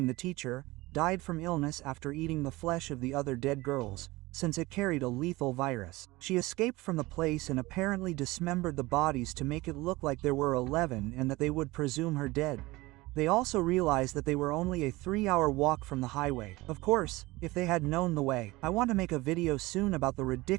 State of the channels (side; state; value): left; quieter; 20.7 dB